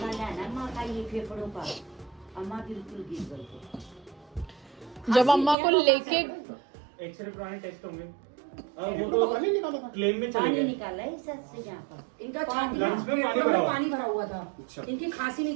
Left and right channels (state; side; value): drops out; left; at 5.6 s